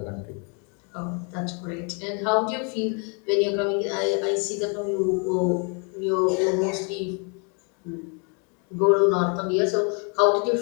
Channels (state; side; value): quieter; right; 37.0 dB